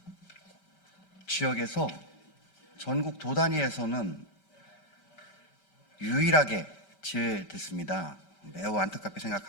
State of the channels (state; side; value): late; right; 5.1 ms